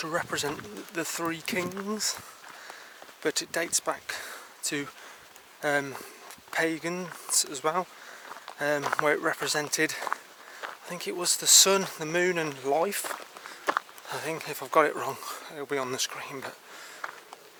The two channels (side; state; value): both; identical; correlation 1.00